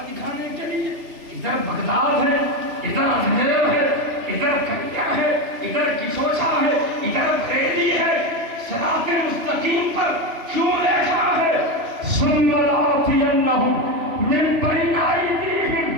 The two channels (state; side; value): late; left; 3.0 ms